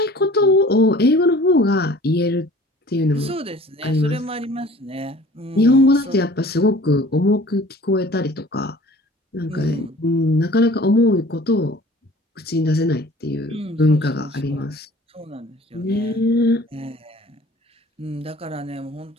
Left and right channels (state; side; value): normal; both; correlation 0.48